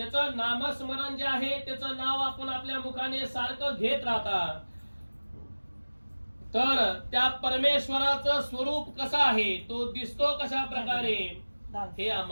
नामस्मरण जे आहे त्याचं नाव आपण आपल्या मुखाने सारखं घेत राहता, तर त्या परमेश्वराचं स्वरूप कसं आहे, तो दिसतो कशा प्रकारे हे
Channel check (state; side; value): inverted; both; correlation -1.00